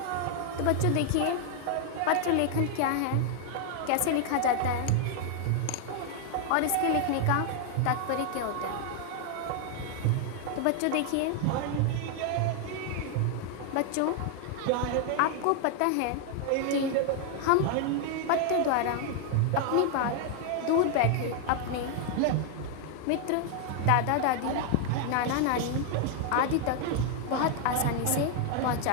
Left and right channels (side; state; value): both; different; correlation 0.00